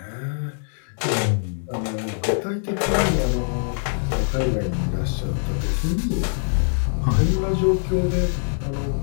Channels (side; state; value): right; silent; digital silence